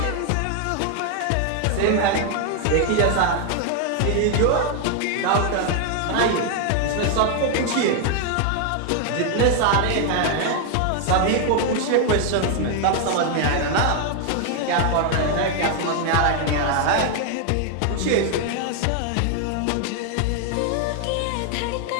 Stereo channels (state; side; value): different; both; correlation 0.00